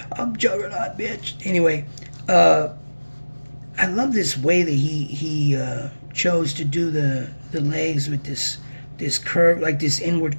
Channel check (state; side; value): inverted; both; correlation -1.00